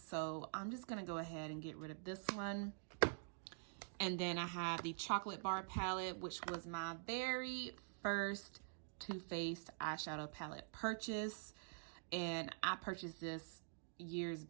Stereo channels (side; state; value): left; silent; digital silence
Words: I'm just going to go ahead and get rid of this one. And then I have the Chocolate Bar palette, which was my very first Too Faced eyeshadow palette purchase. And I purchased this years